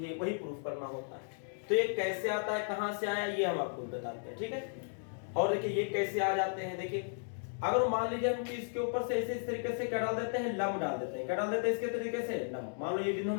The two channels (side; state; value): right; silent; digital silence